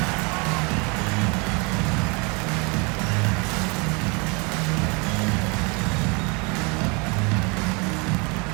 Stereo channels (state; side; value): quieter; left; 30.4 dB